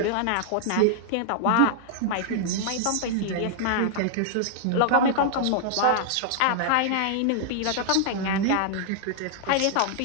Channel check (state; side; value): different; both; correlation -0.01